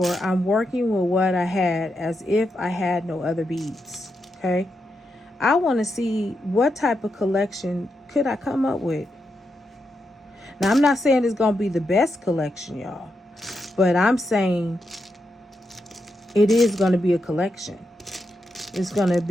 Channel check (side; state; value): both; normal; correlation 0.84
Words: I'm working with what I had as if I had no other beads. Okay. I want to see what type of collection could I come up with. Now, I'm not saying it's going to be the best collection, y'all. But I'm saying it is going to be a collection. It's going to